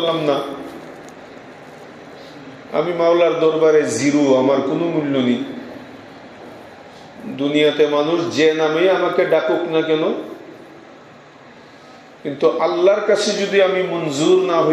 না, আমি মাওলার দরবারে জিরো, আমার কোনো মূল্য নেই। দুনিয়াতে মানুষ যে নামে আমাকে ডাকুক না কেন, কিন্তু আল্লাহর কাছে যদি আমি মঞ্জুর না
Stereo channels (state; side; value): identical; both; correlation 1.00